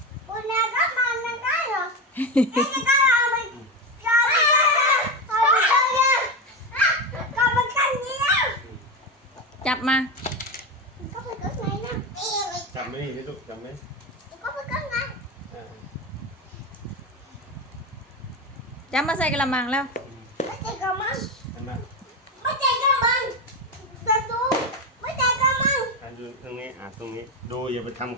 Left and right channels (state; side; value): normal; both; correlation 0.17